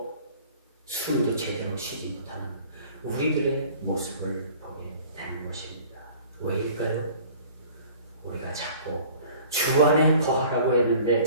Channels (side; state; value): both; inverted; correlation -0.48